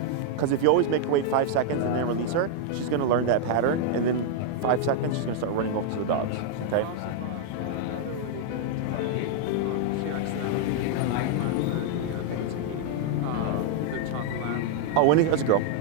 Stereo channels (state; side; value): different; both; correlation -0.01